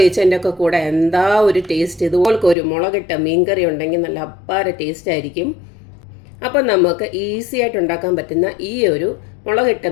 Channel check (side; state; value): right; drops out; at 2.6 s